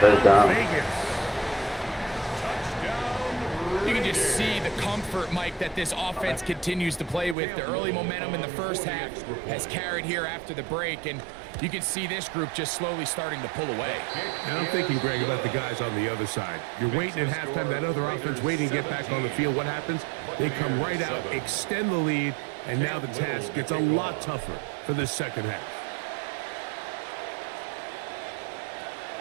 down. Vegas. You can just see the comfort, Mike, that this offense continues to play with. The early momentum in the first half has carried here after the break, and you can see this group just slowly starting to pull away. And I'm thinking, Greg, about the guys on the other side. You're waiting at halftime, that other offense waiting to get back on the field. What happens? They come right out, extend the lead, and now the task gets a lot tougher for the second half.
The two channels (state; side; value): drops out; left; at 7.4 s